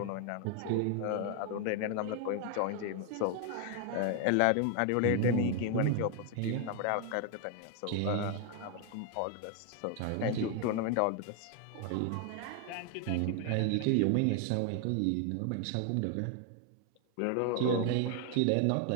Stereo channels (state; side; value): different; both; correlation 0.01